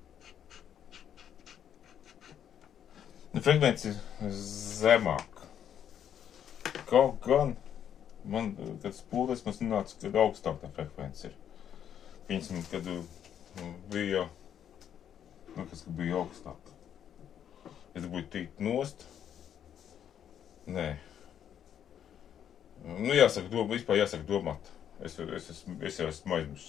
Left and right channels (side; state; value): right; quieter; 9.3 dB